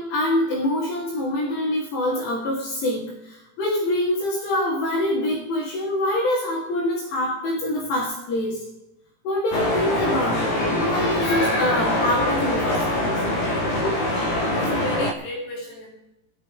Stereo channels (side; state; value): right; late; 18 ms